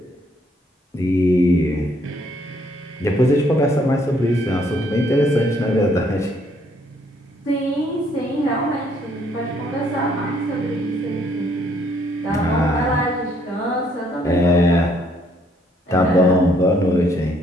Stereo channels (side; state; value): both; normal; correlation 0.67